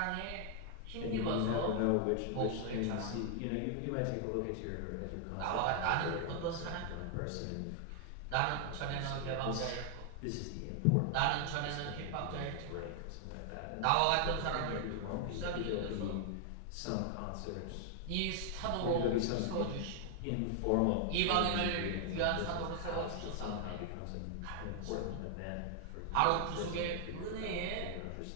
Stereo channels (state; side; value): different; both; correlation 0.00